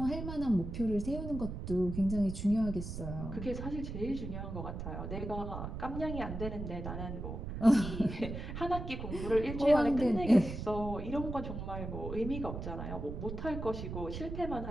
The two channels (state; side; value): noise; right; rumble, 6 dB below the sound